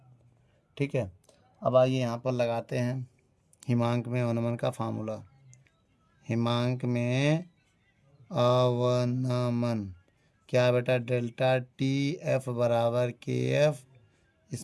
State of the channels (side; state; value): both; identical; correlation 1.00